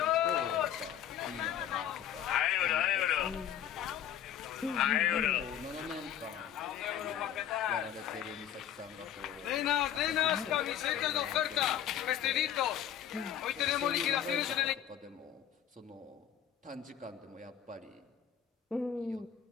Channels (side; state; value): right; quieter; 10.1 dB